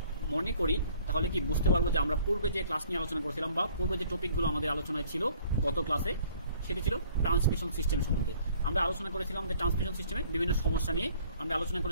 মনে করি তাহলে কি বুঝতে পারবো যে আমরা পূর্বে যে ক্লাস নিয়ে আলোচনা করেছিলাম বা পূর্বে যে টপিকগুলো আমাদের আলোচনায় ছিল গত ক্লাসে, সেটি ছিল ট্রান্সমিশন সিস্টেম সম্বন্ধে। আমরা আলোচনা করেছিলাম যে ট্রান্সমিশন সিস্টেমে বিভিন্ন সমস্যা নিয়ে আমরা আলোচনা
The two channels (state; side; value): inverted; both; correlation -0.57